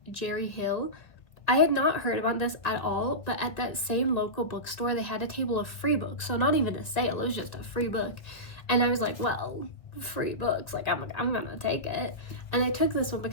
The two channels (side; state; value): right; late; 1.7 ms